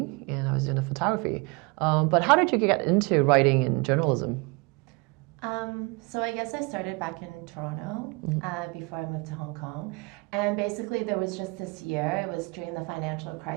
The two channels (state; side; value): quieter; left; 28.6 dB